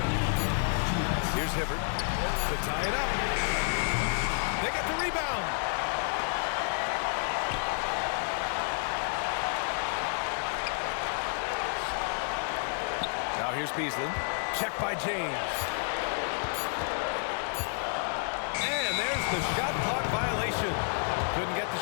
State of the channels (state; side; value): silent; right; 58 dB below the other